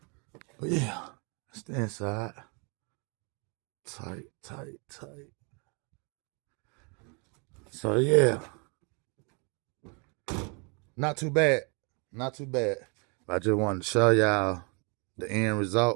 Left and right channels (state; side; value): quieter; left; 33.9 dB